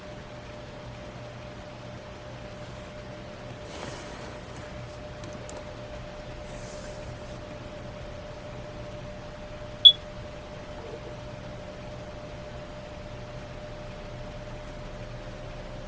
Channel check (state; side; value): identical; both; correlation 1.00